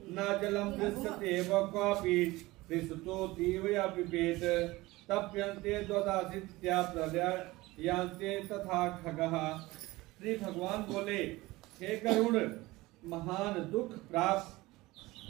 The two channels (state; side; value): quieter; left; 20.0 dB